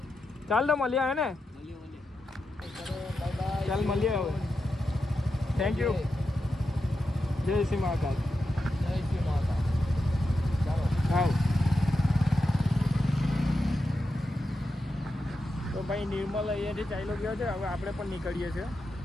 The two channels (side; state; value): both; normal; correlation 0.88